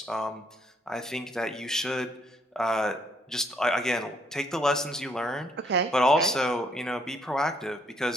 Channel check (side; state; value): both; normal; correlation 0.69